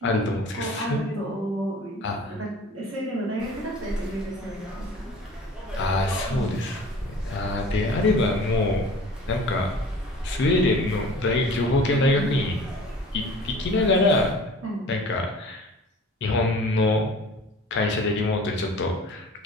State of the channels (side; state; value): both; normal; correlation 0.45